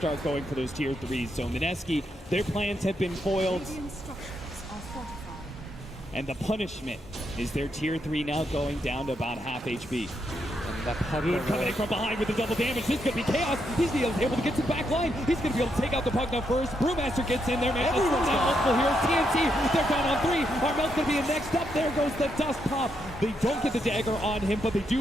going for those tier 3s. So Mineski, their plans have been foiled. And the punishment is their tier 3 now going down to about half HP. Moon coming in from behind with the double damage. This could be chaos. He's able to get to the back line. He's going to be able to take out the Pugna first. Brewmaster gets in there, man. Everyone's got multiple heroes. TNC, they're down on 3. Armel's going to be in next up. There goes the dust pop. They don't get the dagger on him, but they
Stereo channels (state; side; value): normal; both; correlation 0.80